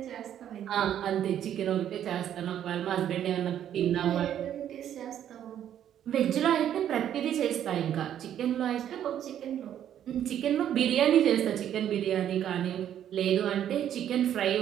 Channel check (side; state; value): left; quieter; 10.4 dB